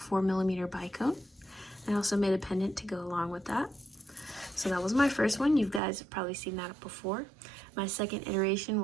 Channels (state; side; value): drops out; left; at 5.8 s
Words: bicone. I also made a pendant to go along with that. So that was my first one. You guys have probably seen that before. My second iteration